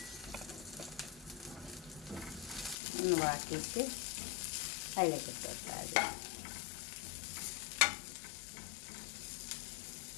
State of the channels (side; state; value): right; drops out; at 2.8 s